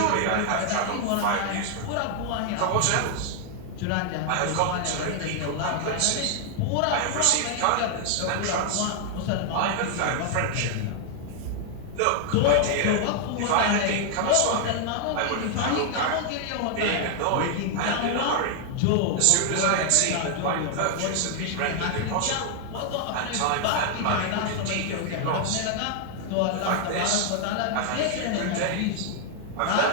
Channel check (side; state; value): both; different; correlation 0.00